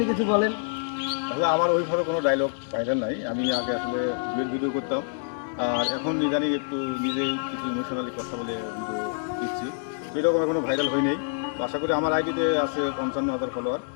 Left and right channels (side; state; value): right; silent; 57 dB below the other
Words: কিছু বলেন। আসলে আমার ওইভাবে কোনো ডায়লগ ভাইরাল নাই। আমি আগে আসলে ভিডিও করতাম, আর এখন ইদানিং একটু নিজেই কিছু ইমোশনালি কথা বলে ভিডিও দিচ্ছি। তো এরকম এখনো ভাইরাল হয়নি। তো আশা করি আমার আইডিতে আছে 55,000 ফলোয়ার।